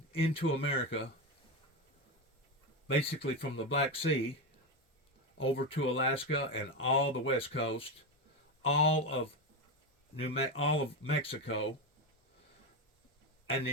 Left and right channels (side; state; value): both; normal; correlation 0.13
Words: into America, basically from the Black Sea over to Alaska and all the West Coast, all of Mexico, and